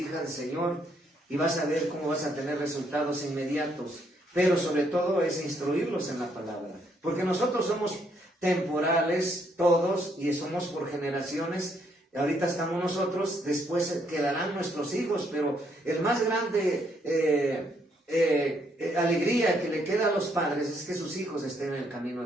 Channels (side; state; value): both; normal; correlation 0.72